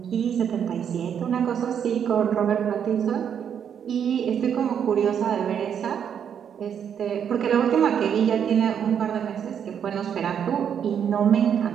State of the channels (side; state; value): left; quieter; 8.3 dB